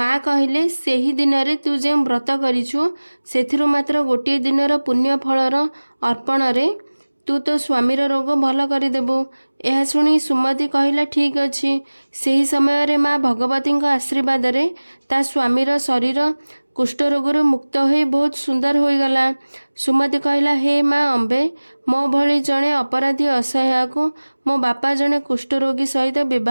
कहले, सेही दिन रे तू जे व्रत करिछु सेथिरु मात्र गोटे दिनर पुण्य फलर अर्पण रे ତୁ ତୋ ସ୍ୱାମୀର ରୋଗ ଭଲ କରିଦେବୁ। ଏହା ଶୁଣି ସୁମତି କହିଲା ଠିକ୍ ଅଛି। ସେହି ସମୟରେ ମା ଭଗବତୀଙ୍କ ଆଶୀର୍ବାଦରେ ତା ସ୍ୱାମୀର ଶରୀର କୁଷ୍ଠରୋଗରୁ ମୁକ୍ତ ହୋଇ ବହୁତ ସୁନ୍ଦର ହୋଇଗଲା। ସୁମତି କହିଲା, ହେ ମା ଅମ୍ବେ, ମୋ ଭଳି ଜଣେ ଅପରାଧୀ ଅସହାୟକୁ ମୋ ବାପା ଜଣେ କୁଷ୍ଠରୋଗୀ ସହିତ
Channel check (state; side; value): inverted; both; correlation -1.00